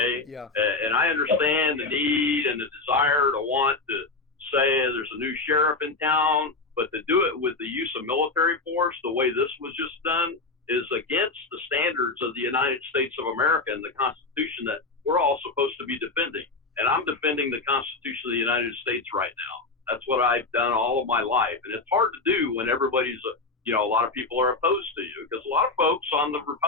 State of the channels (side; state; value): right; quieter; 3.7 dB